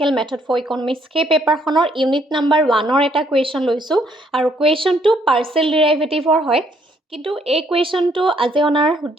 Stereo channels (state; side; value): normal; both; correlation 0.68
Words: মেথড ফৰ ইকনমিক্স সেই পেপাৰখনৰ ইউনিট নাম্বাৰ 1ৰ এটা কুৱেশ্যন লৈছোঁ আৰু কুৱেশ্যনটো পাৰ্চিয়েল ডিৰাইভেটিভৰ হয়। কিন্তু এই কুৱেশ্যনটো আজি অনাৰ